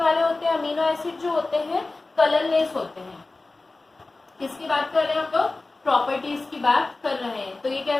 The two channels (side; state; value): right; quieter; 3.3 dB